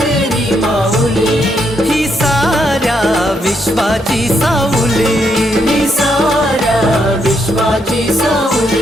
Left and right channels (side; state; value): both; normal; correlation 0.77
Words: माऊली, ही साऱ्या विश्वाची सावली, ही साऱ्या विश्वाची